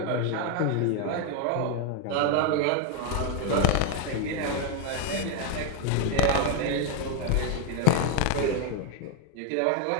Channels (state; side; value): different; both; correlation 0.01